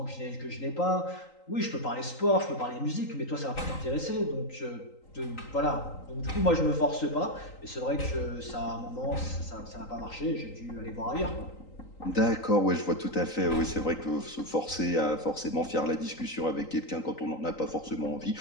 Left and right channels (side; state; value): right; late; 3.9 ms